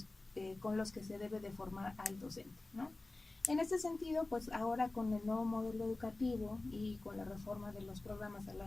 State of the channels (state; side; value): quieter; right; 3.0 dB